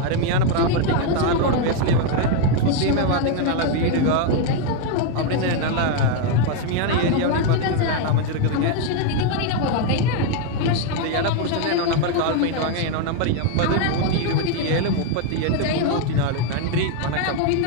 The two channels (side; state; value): both; different; correlation 0.01